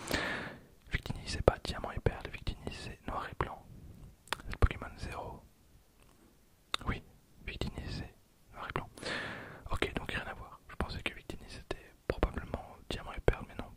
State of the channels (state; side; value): identical; both; correlation 1.00